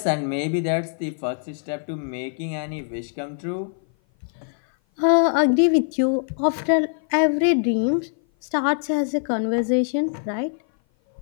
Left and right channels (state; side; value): silent; right; 57 dB below the other